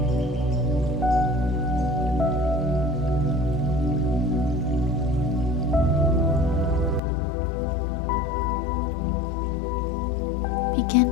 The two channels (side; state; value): right; drops out; at 7.0 s